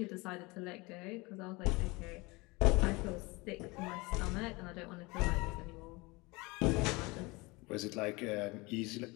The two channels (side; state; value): right; quieter; 24.7 dB